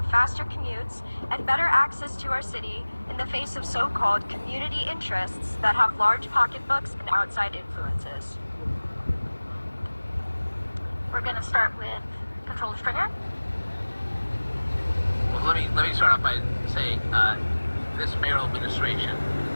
faster commutes and better access to our city in the face of so-called community interests that have large pocketbooks and outside influences? We're going to start with Controller Stringer. Well, let me start off by saying this mayoral administration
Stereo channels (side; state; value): both; inverted; correlation -1.00